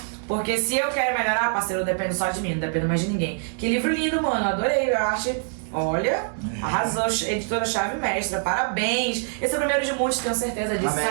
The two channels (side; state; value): left; silent; digital silence